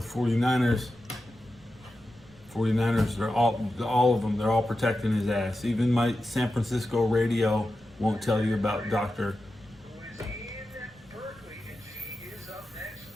49ers. 49ers, they're all of them, they're all protecting his ass. Even my San Francisco radio won't tell you about Dr. Who is in Berkeley, and she is up next.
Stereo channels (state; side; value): noise; right; rumble, 27 dB below the sound